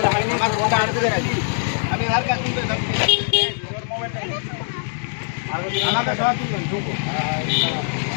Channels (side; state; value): right; silent; digital silence